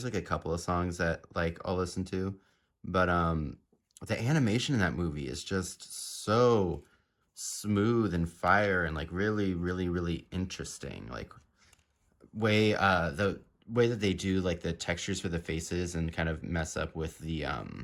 like a couple of songs that like I'll listen to, but the animation in that movie is just so smooth and fire and like really, really, really interesting. Like the way that they do like the textures for the faces and kind of mess up with the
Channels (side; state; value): both; identical; correlation 1.00